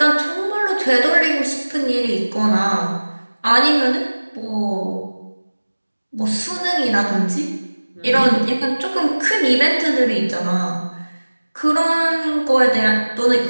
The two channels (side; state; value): both; inverted; correlation -1.00